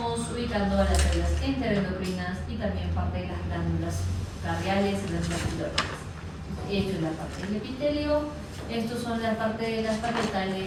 ubicando a las células enteroendocrinas y también parte de las glándulas radiales y las glándulas. Esto es la parte del epitelio, estos son la parte de las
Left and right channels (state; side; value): identical; both; correlation 1.00